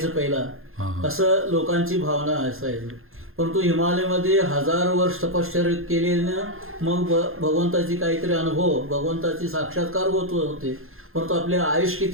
पहिला, असं लोकांची भावना असायची. परंतु हिमालयमध्ये 1000 वर्ष तपश्चर्या केले ना, मग भगवंताची काहीतरी अनुभव, भगवंताची साक्षात्कार होत होते. परंतु आपले आयुष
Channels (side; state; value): left; late; 0.61 ms